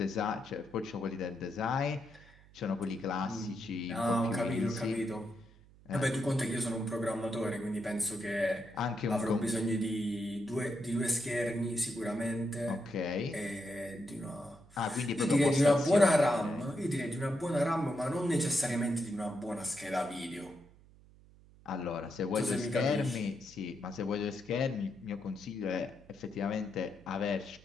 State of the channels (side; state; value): right; noise; hum, 24 dB below the sound